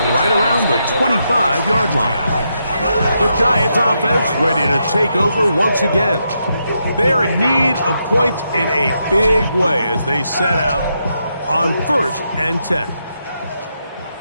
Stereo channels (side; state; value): both; inverted; correlation -0.82